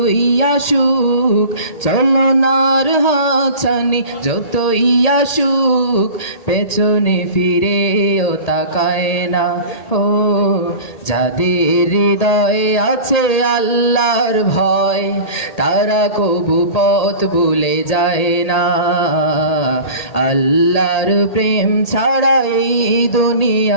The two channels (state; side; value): late; right; 1.8 ms